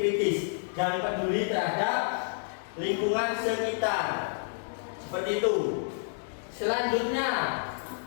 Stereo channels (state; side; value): silent; right; 58 dB below the other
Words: dan peduli terhadap lingkungan sekitar. Seperti itu. Selanjutnya,